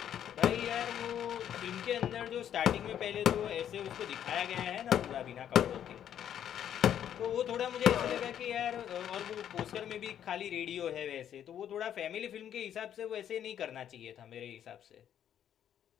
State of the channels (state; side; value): quieter; right; 9.9 dB